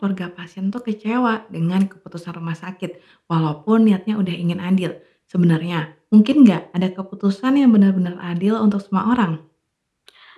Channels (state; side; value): identical; both; correlation 1.00